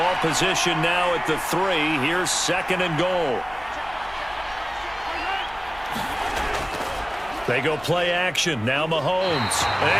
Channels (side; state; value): left; noise; hum, 22 dB below the sound